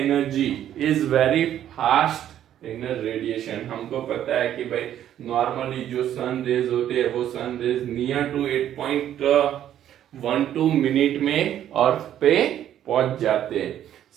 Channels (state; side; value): quieter; left; 11.1 dB